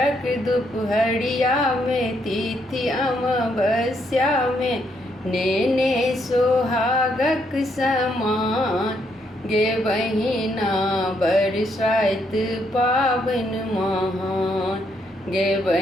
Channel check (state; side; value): normal; both; correlation 0.75